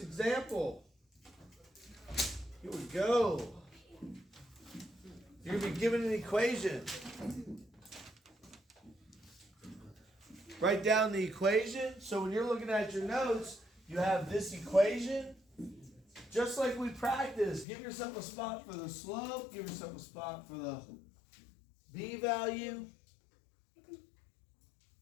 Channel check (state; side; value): drops out; right; at 17.7 s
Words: example. Here we go. You're going to be given an equation. Write down the equation. So when you're looking at your notes, you have this equation. Just like we practiced, give yourself a spot for the slope, give yourself a spot for the b value.